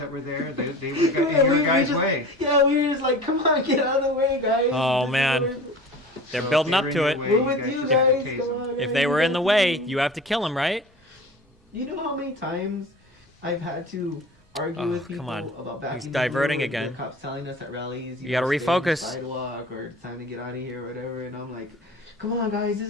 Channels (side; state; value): both; normal; correlation 0.38